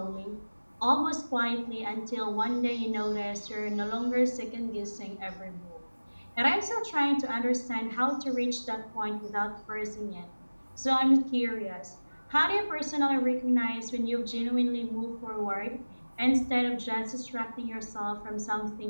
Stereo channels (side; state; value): both; inverted; correlation -1.00